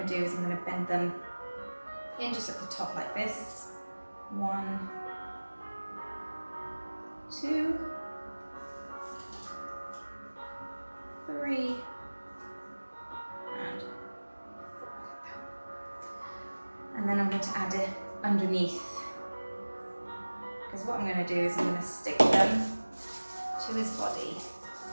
to do is I'm going to bend them in just at the top like this. 1, 2, 3, and 4. And then I'm going to add it underneath, because what I'm going to do is I'm going to stick them to his body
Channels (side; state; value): both; inverted; correlation -1.00